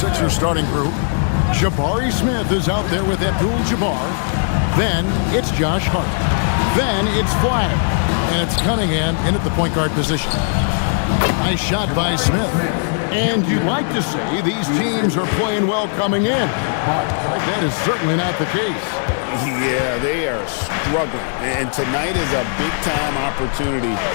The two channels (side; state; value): right; silent; 61 dB below the other